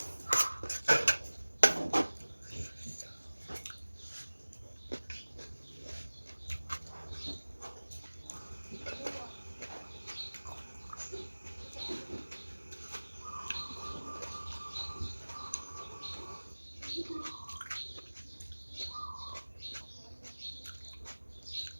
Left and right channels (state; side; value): inverted; both; correlation -1.00